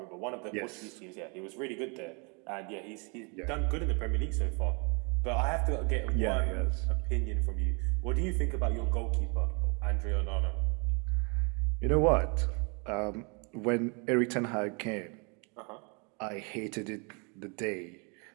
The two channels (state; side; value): quieter; left; 33.8 dB